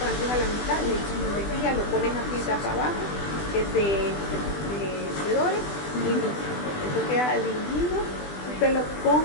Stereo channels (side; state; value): right; late; 20 ms